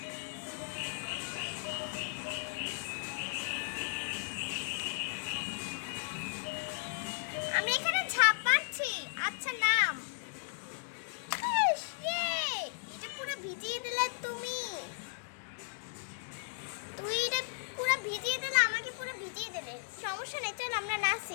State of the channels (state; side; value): silent; right; 54 dB below the other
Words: আমি এখানে ঝাঁপ মারছি। আচ্ছা, নাম। এটা পুরো ভিজিয়ে দিলে তুমি। এটা পুরো ভিজিয়ে দিলে, আমাকে পুরো ভিজিয়ে দিলে। সমস্যা নেই, চল আমরা